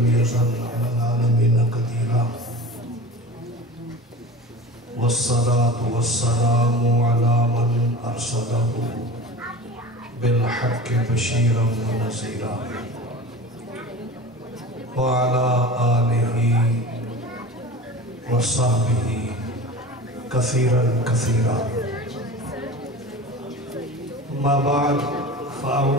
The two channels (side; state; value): both; normal; correlation 0.35